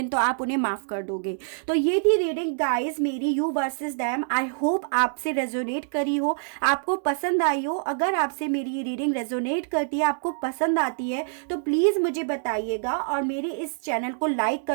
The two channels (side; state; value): left; silent; digital silence